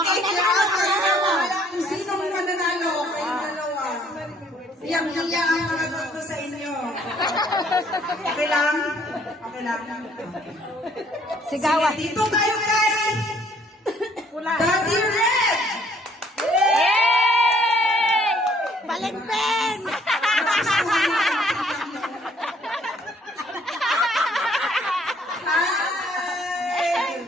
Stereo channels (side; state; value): both; normal; correlation 0.63